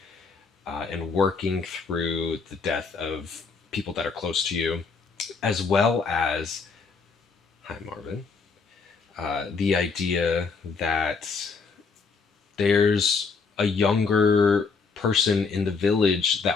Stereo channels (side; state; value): right; quieter; 4.8 dB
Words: and working through the death of people that are close to you, as well as, hi Marvin, the idea that there's a younger person in the village